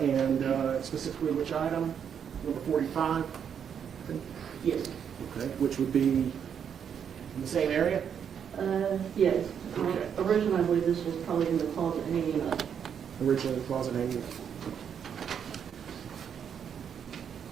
And specifically which item? Number 45? Yes. Okay. Which would be in the same area? Yes. Okay. Originally, I believe this was probably in the closet hanging up. Originally the closet hanging.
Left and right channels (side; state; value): left; quieter; 7.9 dB